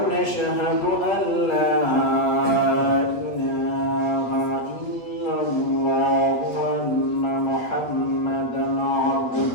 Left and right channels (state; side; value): late; right; 8.3 ms